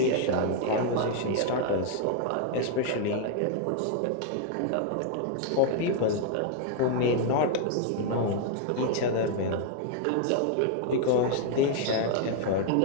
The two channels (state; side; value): different; both; correlation 0.00